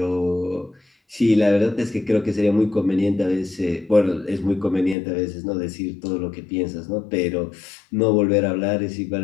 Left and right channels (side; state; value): right; drops out; at 5.0 s